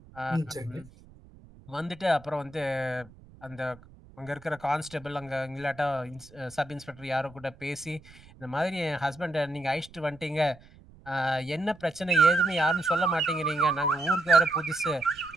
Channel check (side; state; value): right; noise; rumble, 23 dB below the sound